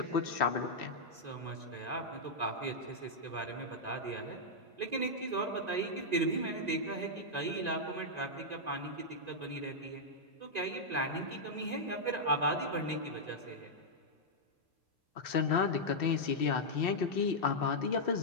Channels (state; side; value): late; left; 1.9 ms